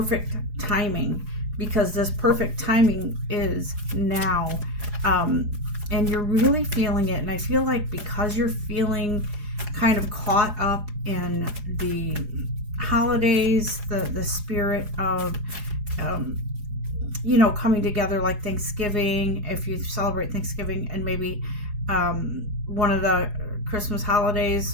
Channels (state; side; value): late; left; 4.8 ms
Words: timing, because this perfect timing is now. And you're really feeling it. And I feel like because you're feeling kind of caught up in the holidays, the spirit of, coming together, like Thanksgiving, if you celebrate Thanksgiving, and maybe one of the Christmas